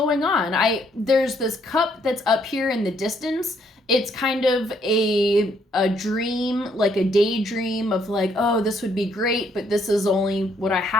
on. There's this cup that's up here in the distance, it's kind of a dream, like a daydream of like, oh, this would be great, but this is only what I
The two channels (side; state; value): both; normal; correlation 0.70